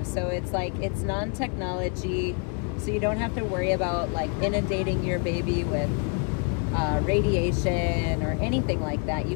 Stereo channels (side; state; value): right; quieter; 37.7 dB